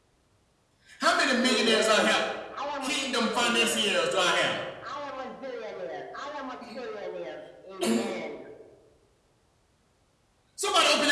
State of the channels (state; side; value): identical; both; correlation 1.00